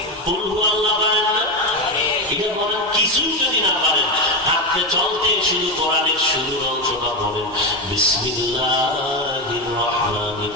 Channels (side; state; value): both; normal; correlation 0.12